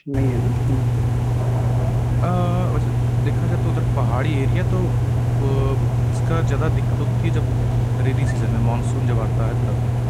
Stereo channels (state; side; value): identical; both; correlation 1.00